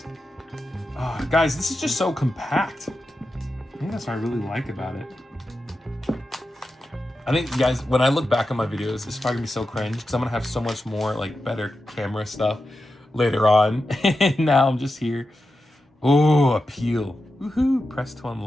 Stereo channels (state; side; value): normal; both; correlation 0.90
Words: Oh, guys, this is just so compact. I think that's what I really like about it. I think, guys, when I look back on my videos, it's probably gonna be so cringe because I'm gonna have so much more like better camera stuff later on. And now I'm just here. Oh, appeal. Woohoo, press to